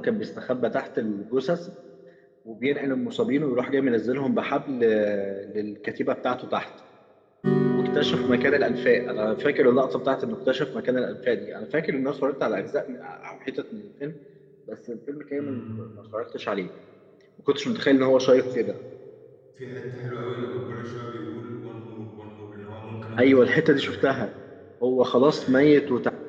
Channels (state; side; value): identical; both; correlation 1.00